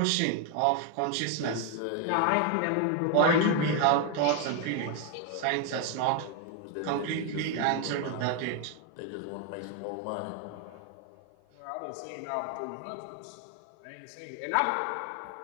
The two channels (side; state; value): both; different; correlation 0.01